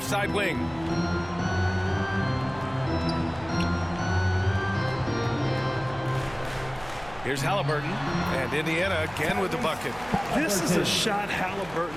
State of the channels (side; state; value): right; noise; hum, 18 dB below the sound